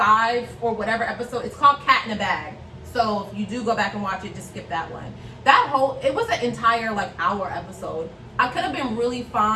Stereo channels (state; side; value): identical; both; correlation 1.00